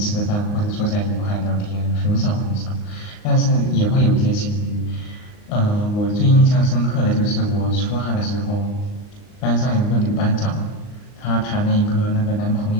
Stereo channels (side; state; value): right; late; 39 ms